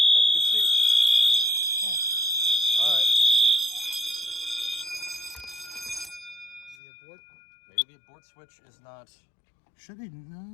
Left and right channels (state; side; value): drops out; right; at 6.8 s